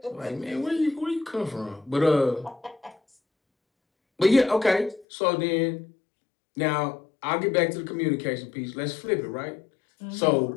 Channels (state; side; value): drops out; right; at 5.1 s